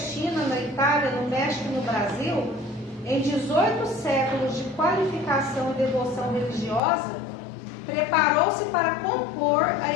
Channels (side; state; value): right; drops out; at 6.8 s